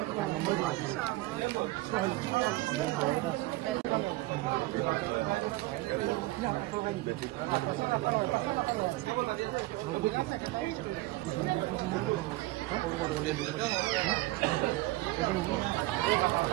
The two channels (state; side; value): quieter; left; 19.4 dB